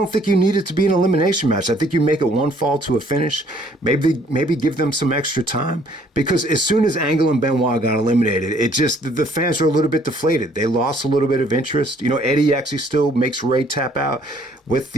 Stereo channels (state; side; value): normal; both; correlation 0.62